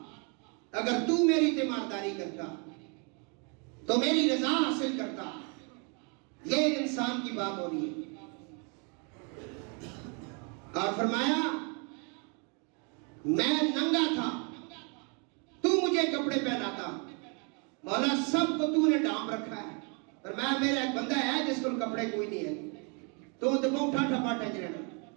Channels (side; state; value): left; quieter; 35.3 dB